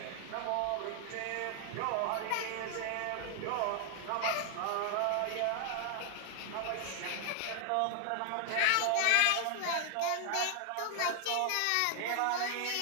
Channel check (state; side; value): different; both; correlation 0.00